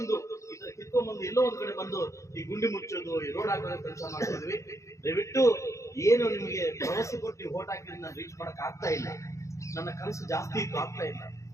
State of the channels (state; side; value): late; right; 0.15 ms